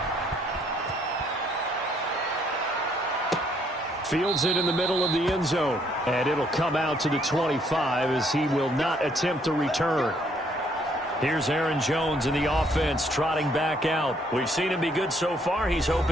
Fields it in the middle of the end zone. And it'll come out to the 25 as he will not attempt to return. Here's Aaron Jones in the offense trotting back out. We've seen him be good so far. He's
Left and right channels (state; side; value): normal; both; correlation 0.68